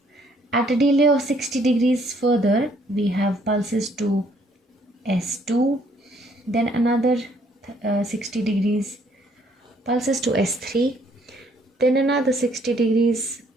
At a delay of 60 degrees further, we have pulses to S2, then another 60 degrees, pulses to S3, then another 60 degrees,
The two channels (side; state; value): both; normal; correlation 0.65